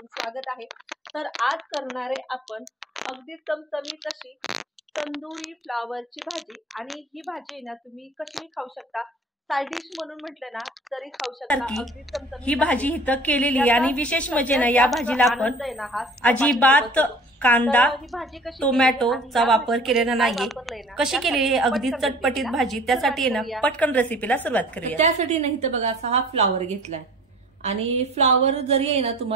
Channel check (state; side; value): normal; both; correlation 0.47